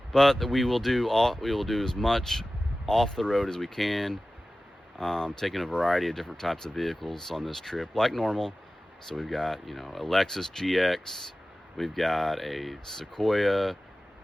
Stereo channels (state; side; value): normal; both; correlation 0.96